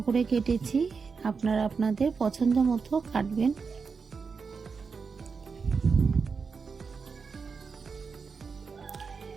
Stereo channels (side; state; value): left; quieter; 5.2 dB